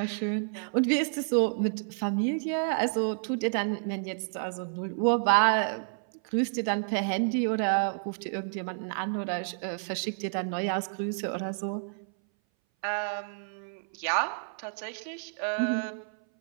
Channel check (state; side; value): silent; left; 58 dB below the other